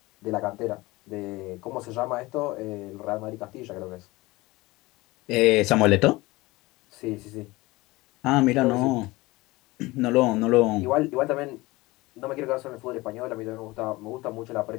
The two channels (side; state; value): right; quieter; 21.1 dB